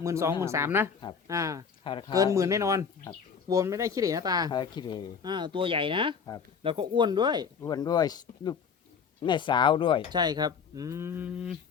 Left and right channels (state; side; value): quieter; right; 6.4 dB